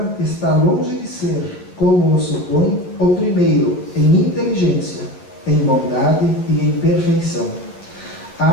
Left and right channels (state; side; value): late; right; 11 ms